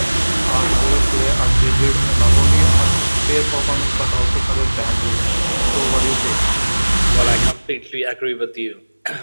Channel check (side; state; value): both; inverted; correlation -1.00